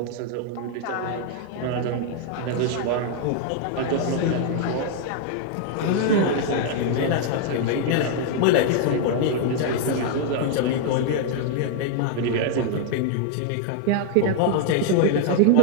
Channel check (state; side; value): different; both; correlation -0.01